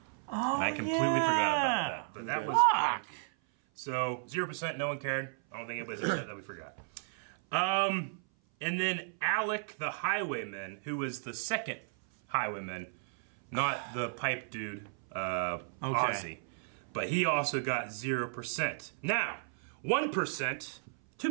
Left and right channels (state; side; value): silent; left; 55 dB below the other